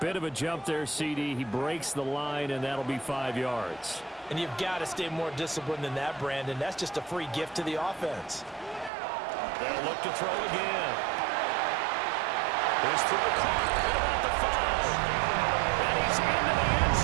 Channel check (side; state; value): left; drops out; at 8.9 s